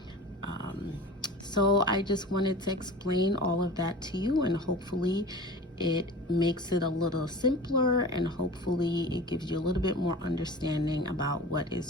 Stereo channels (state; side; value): normal; both; correlation 0.37